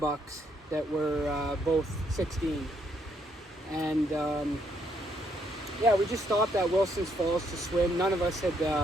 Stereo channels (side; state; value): both; normal; correlation 0.73